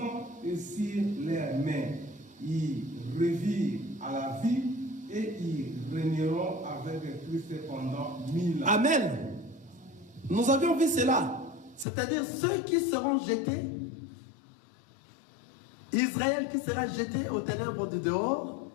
et sur leurs mains. Ils revirent à la vie et ils régneront avec Christ pendant 1000 ans. Amen. Nous avions vu cela. C'est-à-dire ceux qui seront jetés, Israël qui sera jeté aux ténèbres du dehors,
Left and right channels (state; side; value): drops out; right; at 11.9 s